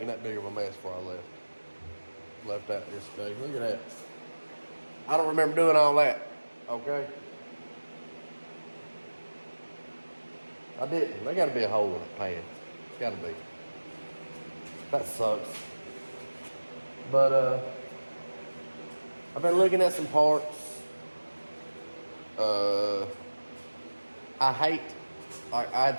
that big of a mess before I left out yesterday. Look at that. I don't remember doing all that. Okay. I didn't. There gotta be a hole in the pan. It's gotta be. That sucks. But I've been looking at some parts. I hate, I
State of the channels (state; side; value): inverted; both; correlation -1.00